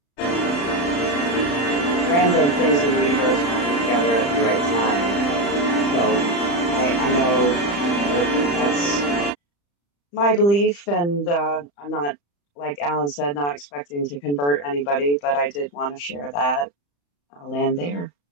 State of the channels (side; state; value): right; late; 35 ms